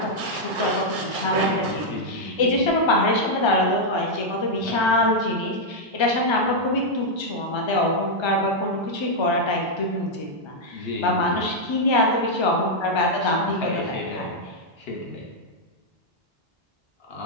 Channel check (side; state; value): both; normal; correlation -0.03